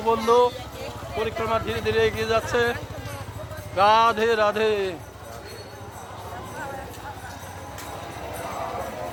বন্ধু পরিক্রমা ধীরে ধীরে এগিয়ে যাচ্ছে। রাধে রাধে।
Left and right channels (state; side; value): identical; both; correlation 1.00